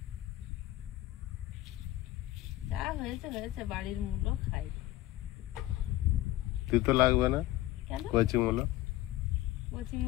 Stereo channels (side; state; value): right; quieter; 15.9 dB